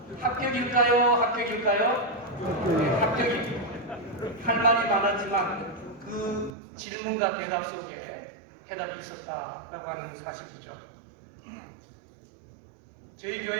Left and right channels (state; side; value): drops out; left; at 6.5 s